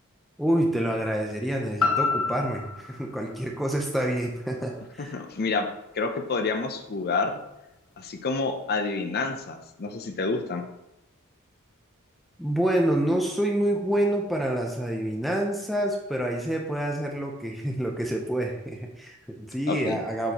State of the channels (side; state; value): both; normal; correlation 0.62